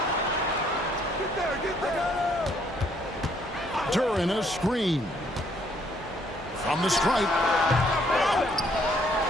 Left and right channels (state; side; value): normal; both; correlation 0.67